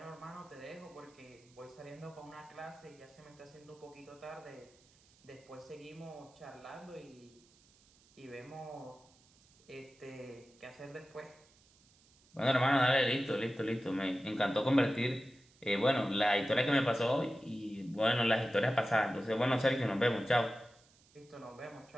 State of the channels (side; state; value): right; noise; hiss, 29 dB below the sound